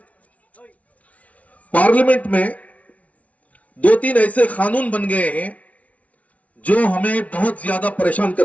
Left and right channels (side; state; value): right; late; 0.067 ms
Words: پارلیمنٹ میں 2-3 ایسے قانون بن گئے ہیں جو ہمیں بہت زیادہ پریشان